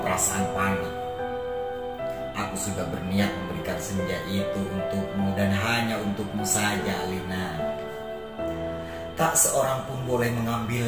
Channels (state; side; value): identical; both; correlation 1.00